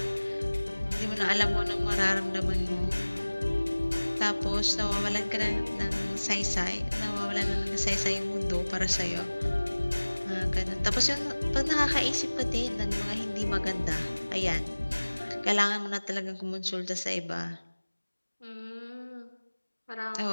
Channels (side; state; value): both; inverted; correlation -1.00